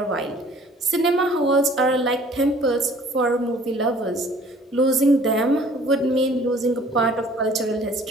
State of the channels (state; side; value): normal; both; correlation 0.53